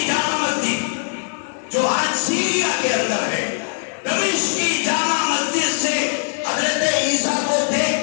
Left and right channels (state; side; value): silent; right; 58 dB below the other